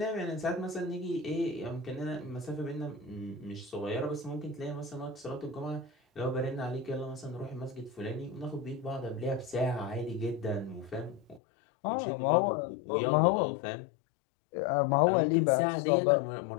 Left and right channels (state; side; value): drops out; right; at 11.4 s